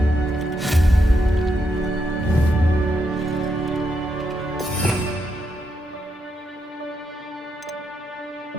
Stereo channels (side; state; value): both; normal; correlation 0.81